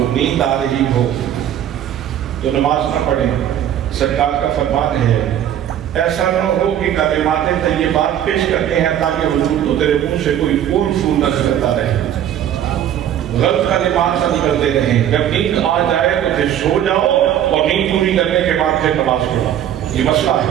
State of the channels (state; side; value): quieter; left; 10.7 dB